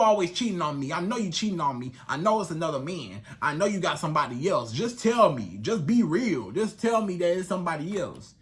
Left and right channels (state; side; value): identical; both; correlation 1.00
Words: cheating on me. I know you cheating on me. I know it's another man. I know you got somebody else. Just tell me. Just be real. Just tell me that it's somebody else.